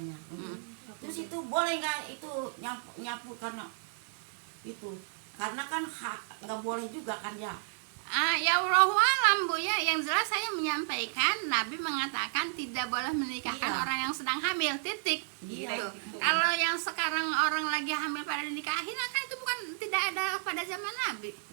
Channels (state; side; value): silent; left; digital silence